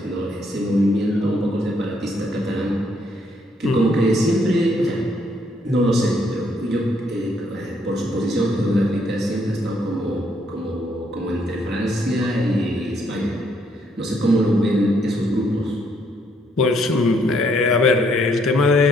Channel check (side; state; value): both; normal; correlation 0.71